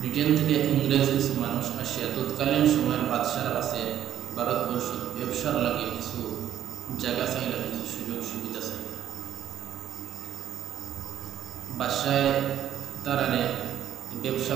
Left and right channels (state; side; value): quieter; left; 10.8 dB